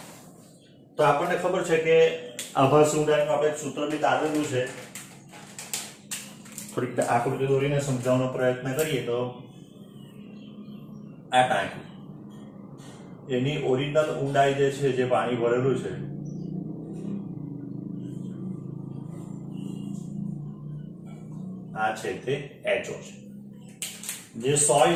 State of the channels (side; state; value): both; identical; correlation 1.00